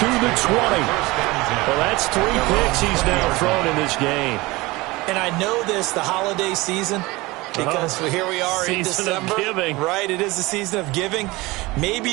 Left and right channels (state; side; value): quieter; left; 21.7 dB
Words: the 20. Well, that's 3 picks he's now thrown in this game. And I know this, the holiday season, because here we are in December. Season of giving. Right, it is the season of giving.